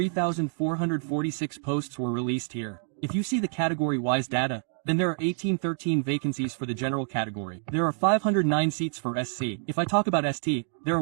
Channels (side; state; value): left; silent; 60 dB below the other